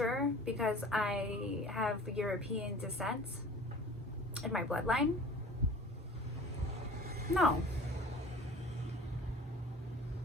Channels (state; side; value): normal; both; correlation 0.44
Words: because I have European descent in my bloodline? No.